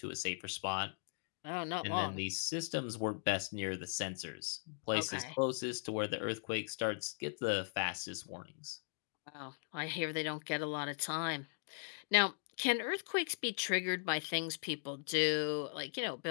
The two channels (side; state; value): right; silent; digital silence